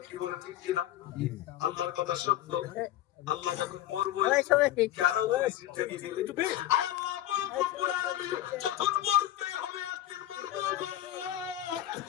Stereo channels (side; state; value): right; quieter; 13.4 dB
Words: কি বলে, ঠিক কিনা? আল্লাহর কথা সত্য। আল্লাহ যখন মরবো কেন তুমি জিন্দেগি দিলে? আল্লাহ রব্বুল আলামিন যখন মরতে হবে একদিন মরবো গো।